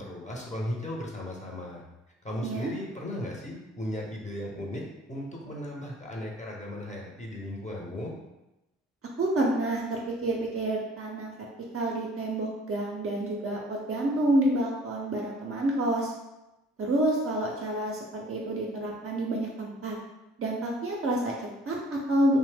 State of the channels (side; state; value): both; normal; correlation 0.54